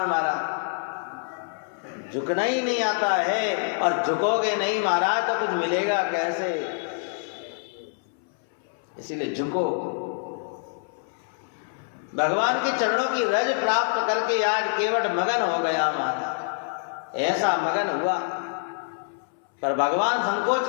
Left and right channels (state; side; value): silent; right; 61 dB below the other